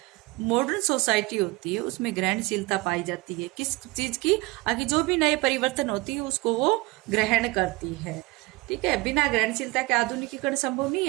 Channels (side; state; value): left; quieter; 23.1 dB